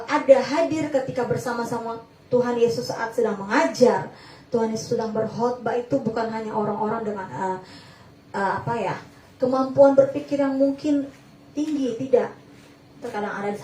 ada hadir ketika bersama-sama Tuhan Yesus saat sedang mengajar, Tuhan Yesus sedang berkhotbah itu bukan hanya orang-orang dengan kemampuan berpikir yang mungkin tinggi, tidak. Terkadang ada di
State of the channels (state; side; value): identical; both; correlation 1.00